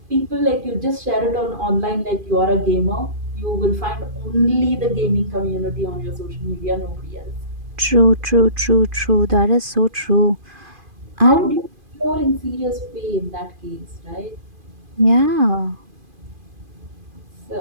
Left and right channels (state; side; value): late; left; 2.5 ms